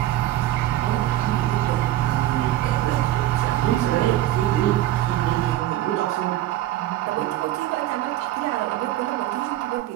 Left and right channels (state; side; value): quieter; left; 14.2 dB